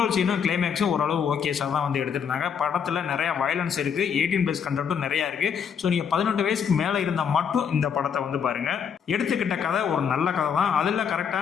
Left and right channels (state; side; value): quieter; right; 7.3 dB